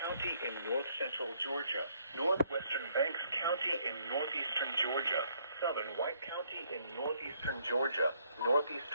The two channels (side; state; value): both; inverted; correlation -0.68